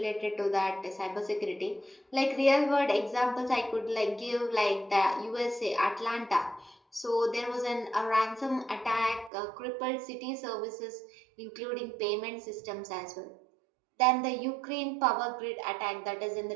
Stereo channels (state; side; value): drops out; left; at 9.3 s